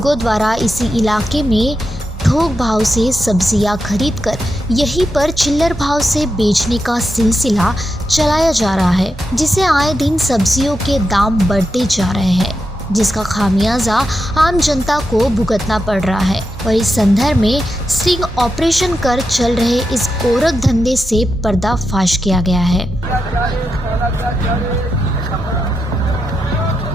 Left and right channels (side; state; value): both; normal; correlation 0.87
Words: द्वारा इसी इलाके में थोक भाव से सब्जियां खरीदकर यहीं पर चिल्लर भाव से बेचने का सिलसिला चलाया जा रहा है, जिसे आए दिन सब्जियों के दाम बढ़ते जा रहे हैं, जिसका खामियाजा आम जनता को भुगतना पड़ रहा है। और इस संदर्भ में स्टिंग ऑपरेशन कर चल रहे इस गोरख धंधे से पर्दाफाश किया गया है।